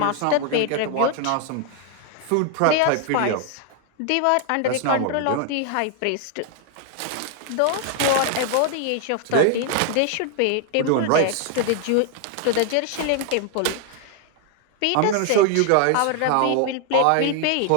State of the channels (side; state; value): both; different; correlation 0.00